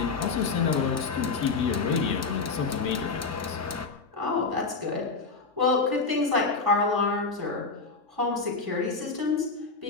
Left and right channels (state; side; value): quieter; right; 4.3 dB